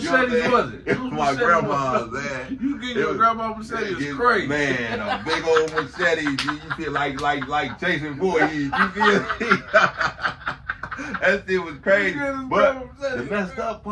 machete was it? My grandma's, man. You get your grandma's machete is crazy. Man, a big old machete, you feel like Jason Voorhees, you feel that shit was crazy. But the messed up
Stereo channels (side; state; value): both; identical; correlation 1.00